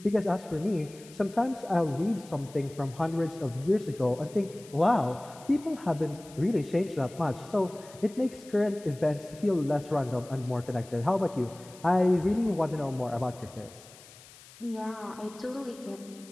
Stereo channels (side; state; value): left; noise; hiss, 21 dB below the sound